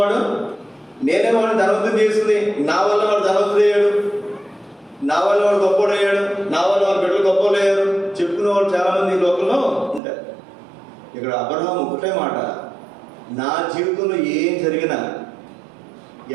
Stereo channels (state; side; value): drops out; left; at 10.0 s